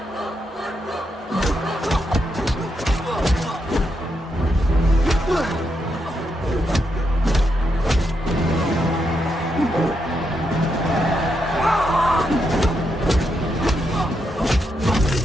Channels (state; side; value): normal; both; correlation 0.82